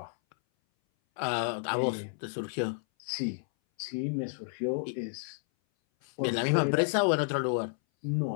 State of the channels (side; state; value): right; silent; 57 dB below the other